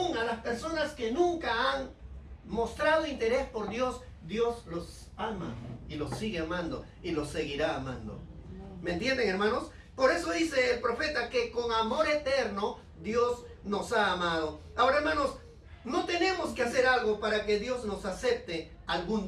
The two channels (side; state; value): both; identical; correlation 1.00